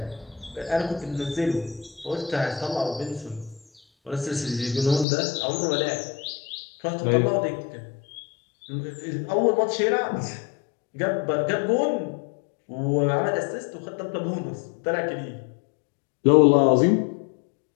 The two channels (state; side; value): drops out; right; at 5.1 s